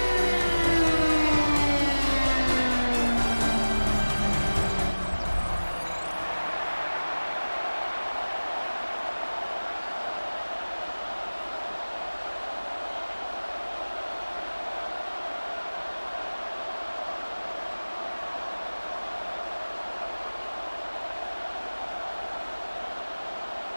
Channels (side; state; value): both; inverted; correlation -1.00